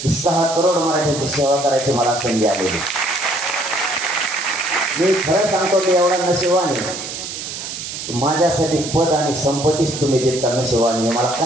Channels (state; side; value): noise; right; hiss, 8 dB below the sound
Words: की 6 करोड मराठ्यांची सेवा करायची मला संधी आलेली. मी खरं सांगतो की एवढा नशिबाने माझ्यासाठी पद आणि संपत्तीच तुम्ही देत का नशिबाने. मला